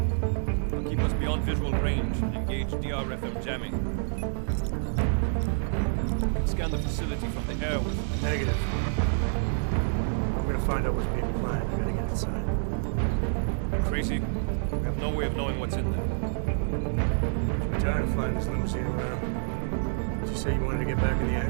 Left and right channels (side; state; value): left; silent; digital silence